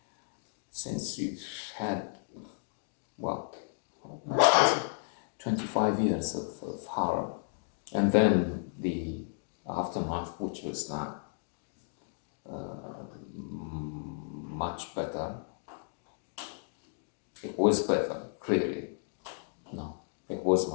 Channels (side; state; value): right; silent; digital silence